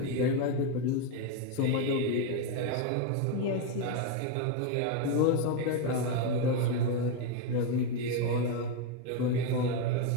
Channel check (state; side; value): different; both; correlation 0.02